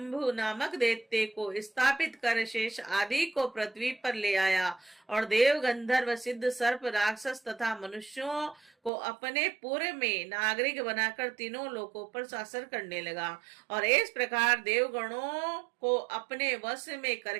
नामक दैत्य को स्थापित कर शेष आदि को पृथ्वी पर ले आया और देव गंधर्व सिद्ध सर्प राक्षस तथा मनुष्यों को अपने पूर्व में नागरिक बनाकर तीनों लोकों पर शासन करने लगा। और इस प्रकार देवगणों को अपने वश में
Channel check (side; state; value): left; drops out; at 8.9 s